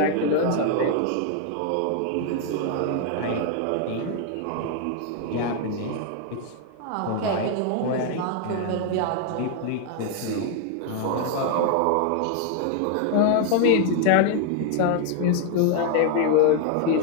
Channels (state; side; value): different; both; correlation 0.00